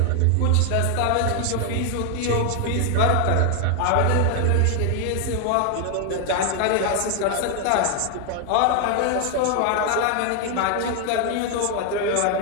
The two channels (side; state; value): both; different; correlation 0.00